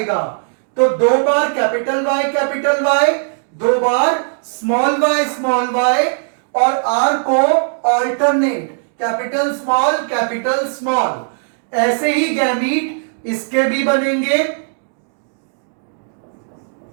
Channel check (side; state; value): left; silent; digital silence